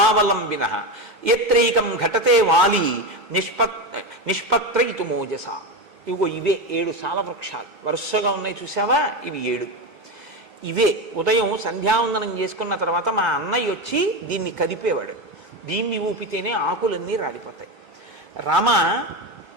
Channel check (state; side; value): normal; both; correlation 0.16